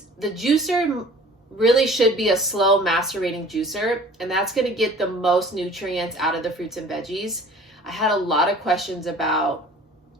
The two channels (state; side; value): normal; both; correlation 0.48